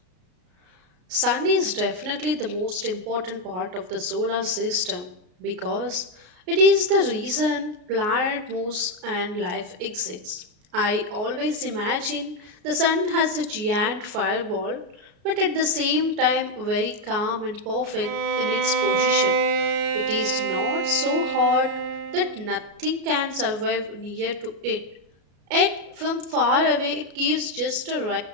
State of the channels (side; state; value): left; late; 33 ms